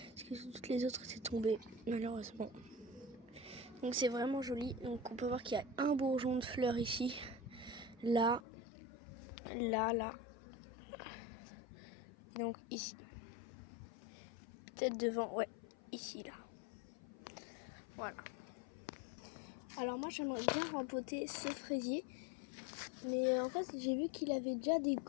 que toutes les autres étaient tombées, malheureusement. Donc c'est vraiment joli. Donc on peut voir qu'il y a un bourgeon de fleurs ici, là. Et donc ici. Peut-être devant, ouais, ici, là. Voilà. Alors moi, j'aimerais bien rempoter ce fraisier. Mais en fait, j'ai vu qu'il avait déjà des...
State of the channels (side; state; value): right; drops out; at 8.4 s